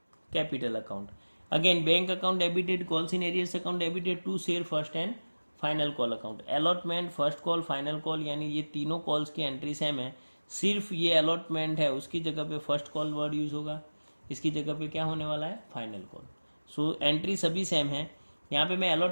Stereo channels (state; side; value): inverted; both; correlation -1.00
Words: capital account. Again bank account debited, calls in arrears account debited to share first and final call account. Allotment, first call, final call, यानी ये तीनों calls की entry same है, सिर्फ ये allotment है उसकी जगह पे फर्स्ट कॉल वर्ड यूज होगा, इसकी जगह पे क्या होने वाला है, फाइनल कॉल. सो एंट्री सभी सेम है. यहाँ पे मैं